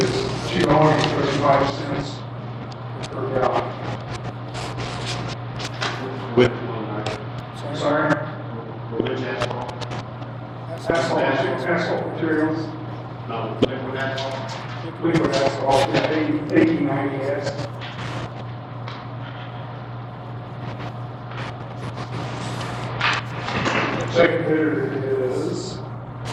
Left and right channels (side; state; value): both; identical; correlation 1.00